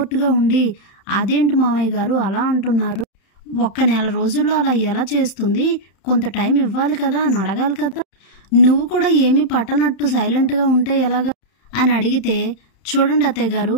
ఉండి, అదేంటి మావయ్య గారు అలా అంటున్నారు? ఒక్క నెల రోజుల్లో అలా ఎలా చేస్తుంది? కొంత టైం ఇవ్వాలి కదా" అని అడగాలి కదా. నువ్వు కూడా ఏమీ పట్టనట్టు సైలెంట్‌గా ఉంటే ఎలాగా అని అడిగితే, చూడండి అత్తయ్య గారు,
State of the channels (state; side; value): late; right; 31 ms